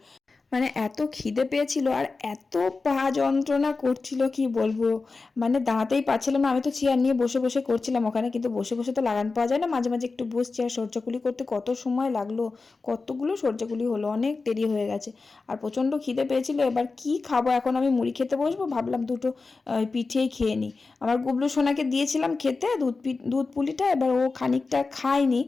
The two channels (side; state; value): right; quieter; 4.0 dB